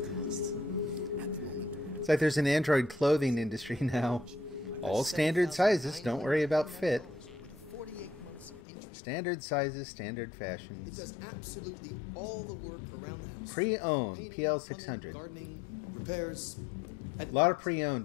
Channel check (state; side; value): drops out; right; at 8.6 s